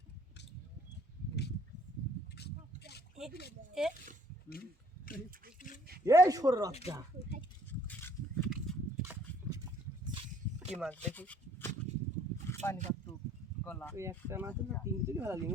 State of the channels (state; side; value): normal; both; correlation 0.60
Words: এই সর রাস্তা কি মাছ দেখি পানি কাটতু গলা ওই একটা মাছ না তিন কেজি ভালো